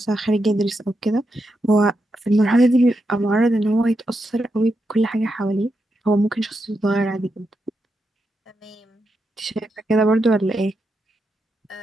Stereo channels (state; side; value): normal; both; correlation 0.85